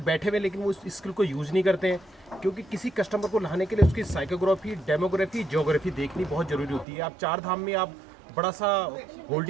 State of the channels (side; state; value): left; drops out; at 6.9 s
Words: बैठे हुए लेकिन वो इस स्किल को यूज नहीं करते हैं। क्योंकि किसी कस्टमर को लाने के लिए उसकी साइकोग्राफी, डेमोग्राफी, ज्योग्राफी देखनी बहुत जरूरी होती है। आप 4 धाम में आप बड़ा सा